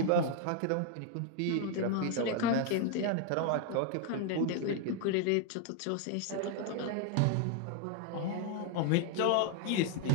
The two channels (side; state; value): both; different; correlation 0.01